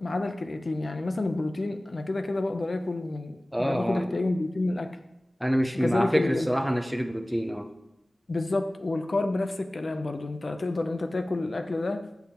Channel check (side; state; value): both; normal; correlation 0.98